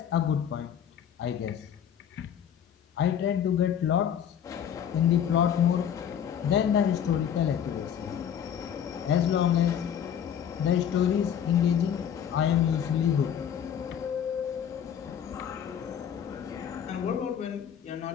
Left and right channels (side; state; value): right; quieter; 8.9 dB